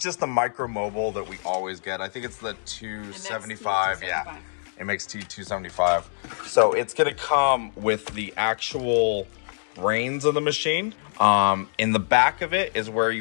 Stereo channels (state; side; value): silent; right; digital silence